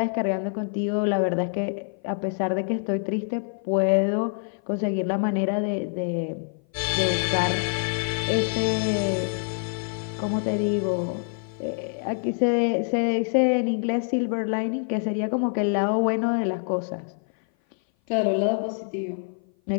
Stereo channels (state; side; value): silent; right; 57 dB below the other